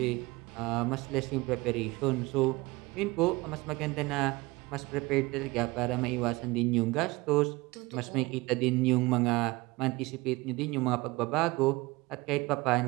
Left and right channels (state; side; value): quieter; left; 22.4 dB